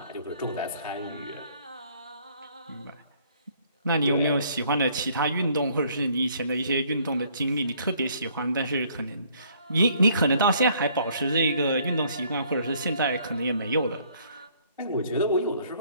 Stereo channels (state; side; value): inverted; both; correlation -0.62